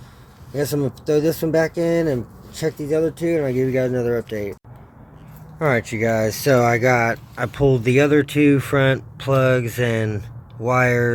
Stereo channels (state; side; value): identical; both; correlation 1.00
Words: I guess I'm gonna throw this one back in and check these other two, and I'll give you guys another update. Alright, you guys, so I pulled the other two front plugs and